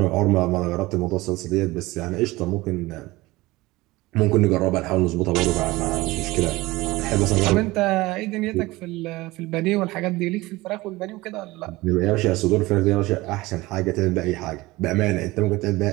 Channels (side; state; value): left; quieter; 20.1 dB